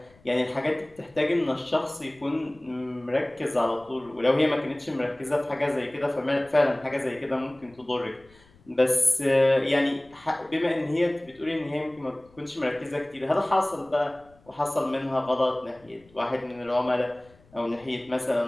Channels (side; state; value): left; noise; rumble, 29 dB below the sound